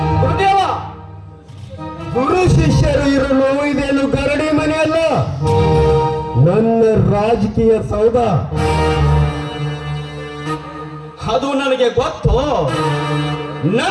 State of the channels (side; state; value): both; identical; correlation 1.00